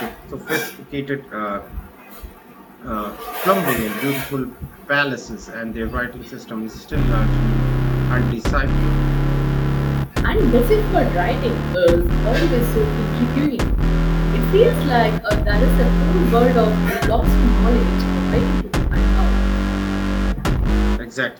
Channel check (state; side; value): identical; both; correlation 1.00